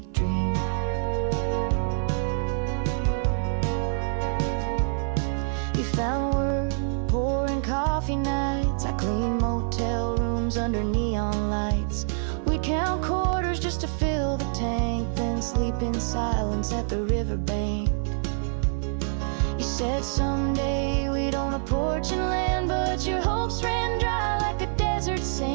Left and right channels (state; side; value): silent; left; 55 dB below the other